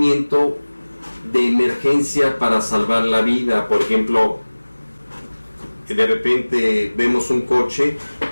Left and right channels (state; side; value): inverted; both; correlation -1.00